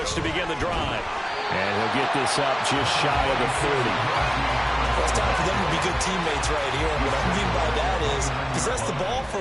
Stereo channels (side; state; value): both; identical; correlation 1.00